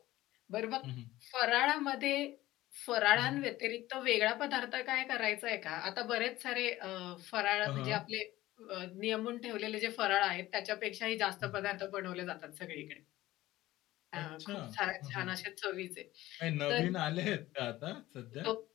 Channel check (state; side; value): quieter; right; 16.5 dB